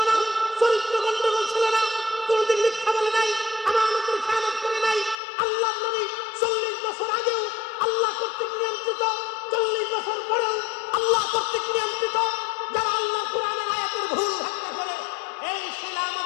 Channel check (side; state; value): right; drops out; at 5.2 s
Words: না, চরিত্র গন্ডগোল ছিল না, কোনদিন মিথ্যা বলে নাই, আমানতের খেয়ানত করে নাই। আল্লাহর নবী 40 বছর আগেও আল্লাহ কর্তৃক নিয়ন্ত্রিত, 40 বছর পরেও আল্লাহ কর্তৃক নিয়ন্ত্রিত। যারা আল্লাহ কোরআনের আয়াতের ভুল ব্যাখ্যা করে, এই শিলা